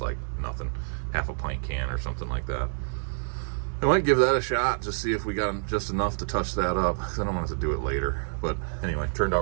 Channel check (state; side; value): silent; left; digital silence